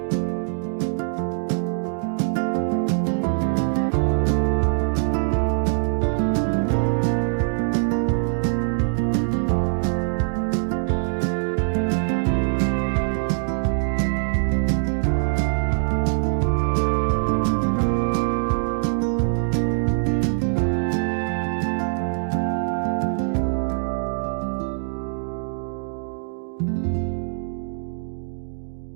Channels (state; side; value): silent; left; digital silence